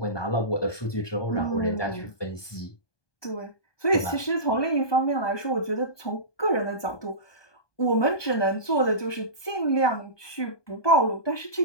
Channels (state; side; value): late; right; 1.2 ms